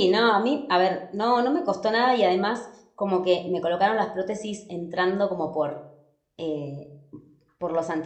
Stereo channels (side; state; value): both; identical; correlation 1.00